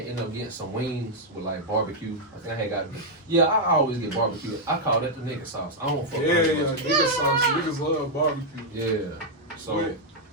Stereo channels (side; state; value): both; normal; correlation -0.03